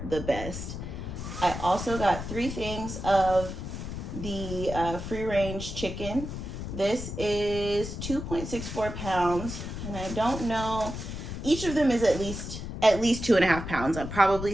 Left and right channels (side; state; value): left; noise; rumble, 7 dB below the sound